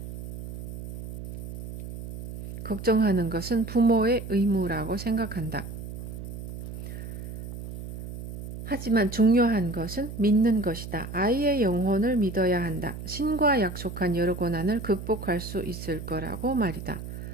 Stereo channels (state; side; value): noise; right; hum, 9 dB below the sound